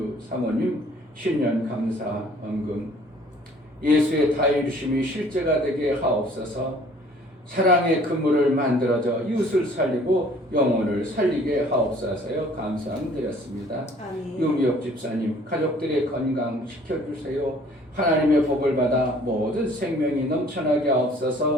사모님 신년 감사 헌금 예수의 다이루심이 실제가 되게 하옵소서. 사랑의 그물을 만들어져 이웃을 살리고 영혼을 살리게 하옵소서요. 감사드렸습니다. 아멘. 유미옥 집사님 가족들의 건강 지켜주세요. 하나님의 복을 받아 모든 생명이 넘쳐나게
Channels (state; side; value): normal; both; correlation 0.55